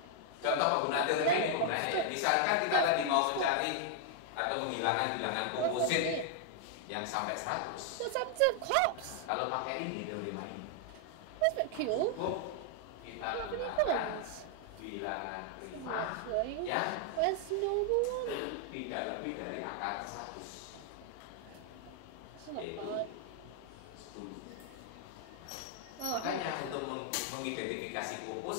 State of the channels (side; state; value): both; different; correlation 0.00